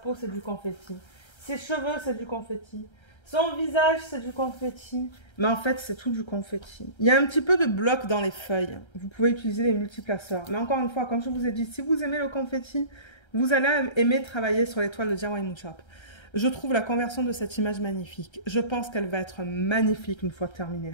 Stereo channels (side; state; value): right; late; 1.3 ms